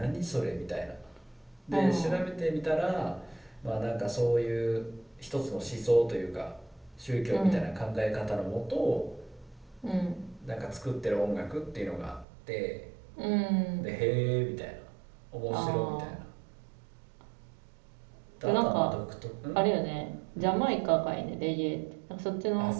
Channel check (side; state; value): left; drops out; at 12.2 s